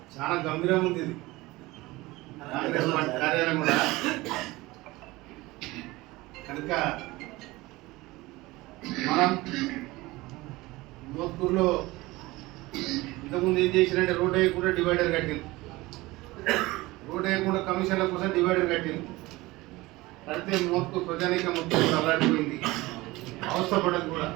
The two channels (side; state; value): left; quieter; 20.4 dB